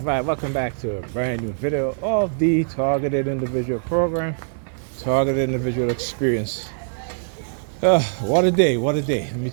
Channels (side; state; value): left; silent; digital silence